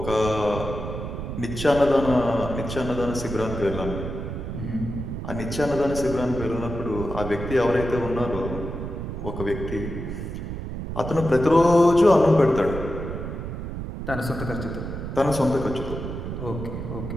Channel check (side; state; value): right; noise; rumble, 6 dB below the sound